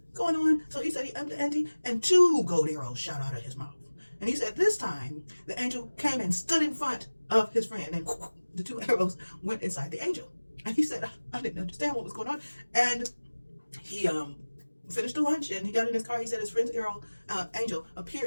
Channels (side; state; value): both; inverted; correlation -1.00